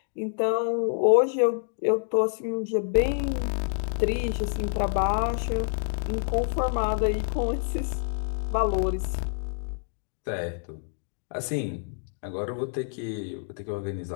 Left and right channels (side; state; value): right; silent; digital silence